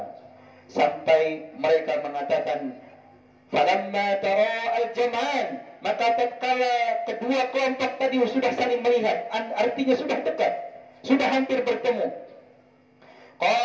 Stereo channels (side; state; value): both; identical; correlation 1.00